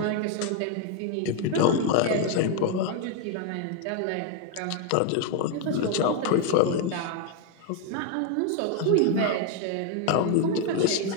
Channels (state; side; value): different; both; correlation 0.01